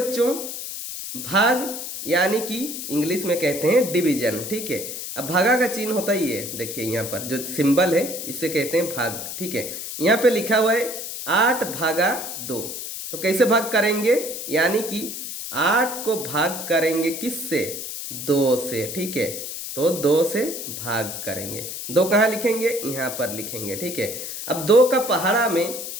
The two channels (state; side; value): noise; left; hiss, 7 dB below the sound